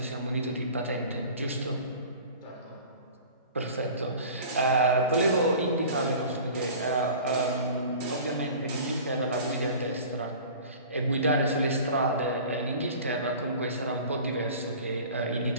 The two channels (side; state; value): both; inverted; correlation -0.42